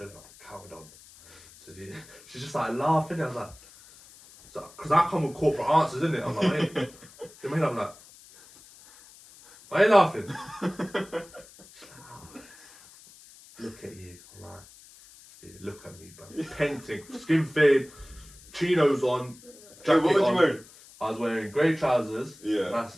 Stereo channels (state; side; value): noise; left; hiss, 22 dB below the sound